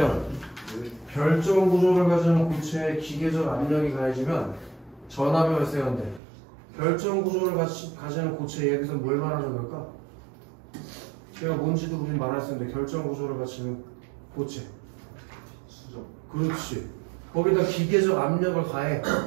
결정 구조를 가지는 고체에 기계적 압력이 가해지면 전압이 발생한대. 결정 구조를 가지는 고체 여기서 뭘 말하는 걸까? 제가 뭔지도 우린 말할 수 있는데 결정 구조를 가지는 고체. 수정. 그렇지. 거기다 기계적 압력을 가해.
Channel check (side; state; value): left; drops out; at 6.2 s